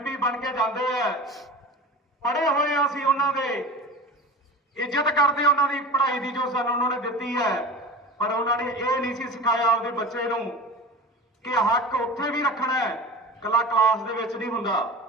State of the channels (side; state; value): both; normal; correlation 0.34